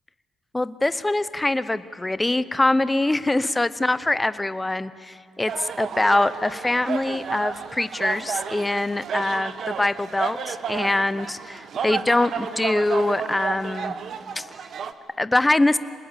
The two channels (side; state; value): both; normal; correlation 0.95